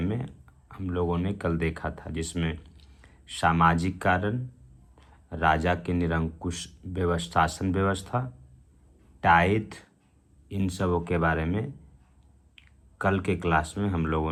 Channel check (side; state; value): both; identical; correlation 1.00